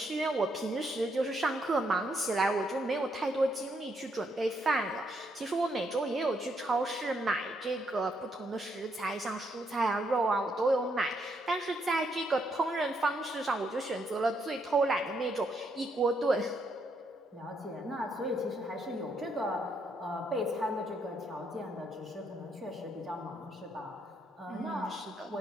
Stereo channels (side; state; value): both; normal; correlation 0.75